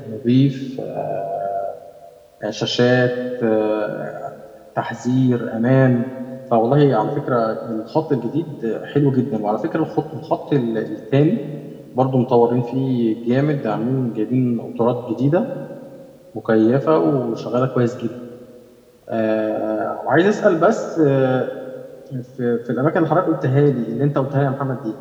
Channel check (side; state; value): both; identical; correlation 1.00